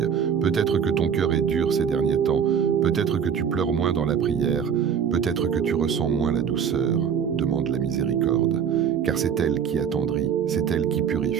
Peut-être que ton cœur est dur ces derniers temps. Peut-être que tu pleures moins dans la prière. Peut-être que tu ressens moins la douceur. Demande la miséricorde. Car c'est elle qui attendrit, c'est elle qui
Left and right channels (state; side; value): quieter; left; 7.6 dB